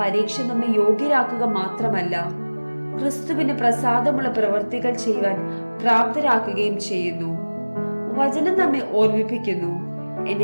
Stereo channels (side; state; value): both; inverted; correlation -1.00